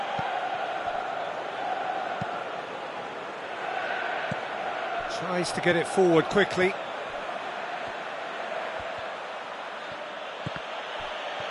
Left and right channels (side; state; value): both; identical; correlation 1.00